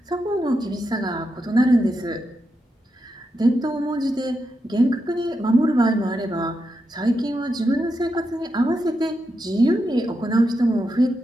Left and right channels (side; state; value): both; normal; correlation 0.86